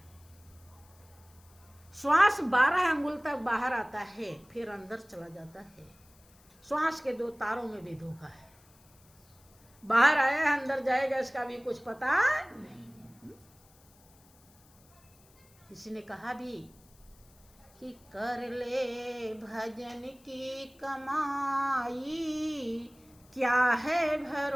श्वास 12 अंगुल तक बाहर आता है, फिर अंदर चला जाता है। श्वास के 2 तारों में भी धोखा है। बाहर आया अंदर जाएगा, इसका भी कुछ पता नहीं। किसी ने कहा भी कि कर ले भजन की कमाई, क्या है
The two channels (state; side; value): noise; left; hiss, 29 dB below the sound